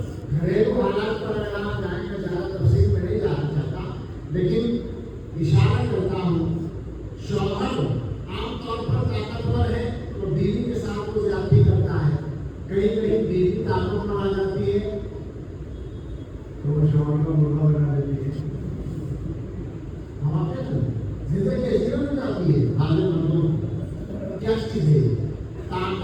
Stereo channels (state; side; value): identical; both; correlation 1.00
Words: گھریلو حالات پر اگر آپ جائیں گے, زیادہ تفصیل میں نہیں جانا چاہتا, لیکن اشارہ کرتا ہوں. شوہر عام طور پر طاقتور ہے تو بیوی کے ساتھ وہ زیادتی کرتا ہے. کہیں کہیں بیوی تعلق میں آ جاتی ہے تو وہ شوہر کا مرغا بنا دیتی ہے. ہم زندگی ایسی ہو جاتی ہے. حالت مندوں کیا چیز ہے,